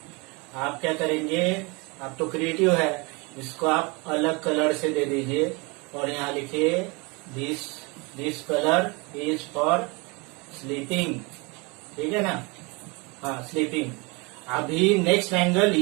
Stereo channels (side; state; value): left; quieter; 28.2 dB